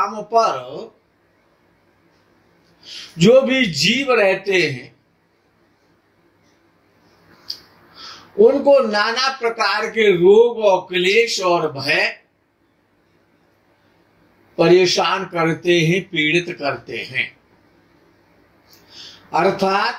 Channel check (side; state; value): both; identical; correlation 1.00